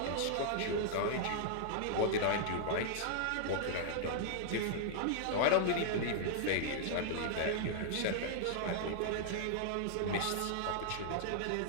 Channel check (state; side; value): different; both; correlation -0.01